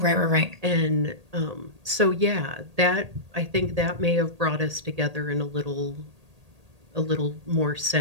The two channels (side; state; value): left; late; 1.8 ms